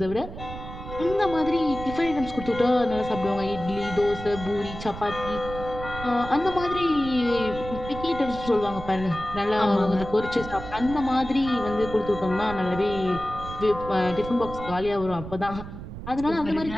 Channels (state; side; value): noise; right; rumble, 11 dB below the sound